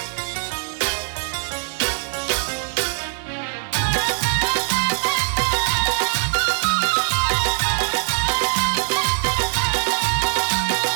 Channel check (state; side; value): silent; left; digital silence